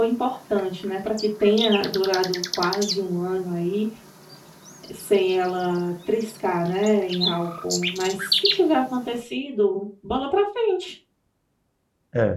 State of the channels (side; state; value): both; identical; correlation 1.00